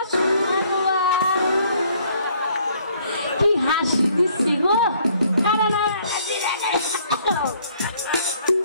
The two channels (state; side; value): inverted; both; correlation -0.63